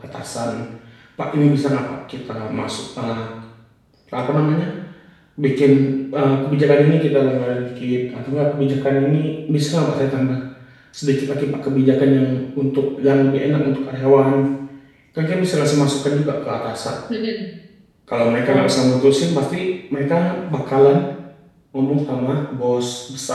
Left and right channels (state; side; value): identical; both; correlation 1.00